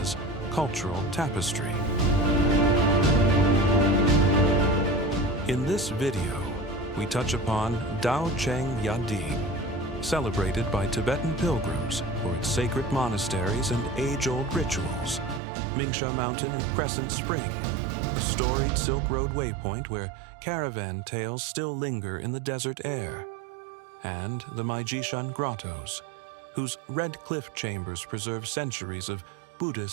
cultural tapestry. In this video, we touch upon Daocheng Yading, celebrated by Tibetan pilgrims for its sacred monasteries and age-old rituals, Mingsha Mountain and Crescent Spring, a storied Silk Road waypoint where caravan tales still linger in the desert air, and the Maijishan grottoes, whose red cliff chambers preserve centuries of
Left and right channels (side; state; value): left; drops out; at 15.4 s